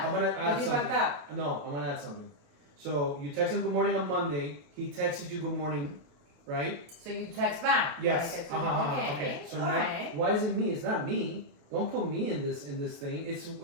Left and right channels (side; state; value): left; late; 28 ms